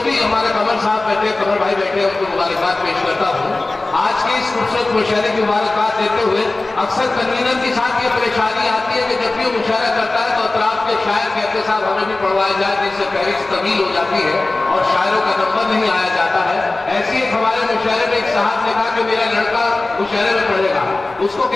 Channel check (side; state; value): right; quieter; 3.1 dB